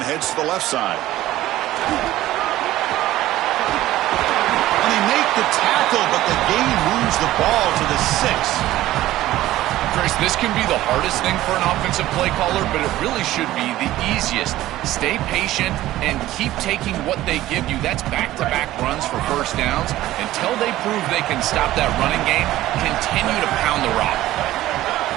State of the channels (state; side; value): quieter; left; 15.2 dB